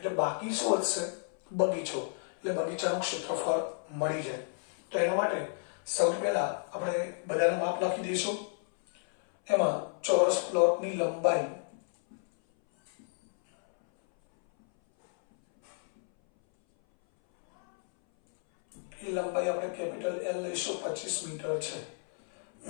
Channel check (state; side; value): silent; right; 57 dB below the other